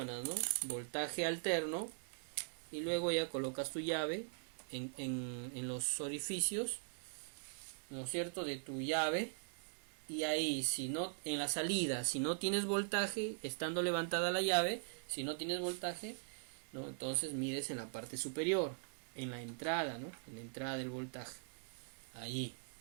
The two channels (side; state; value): left; silent; digital silence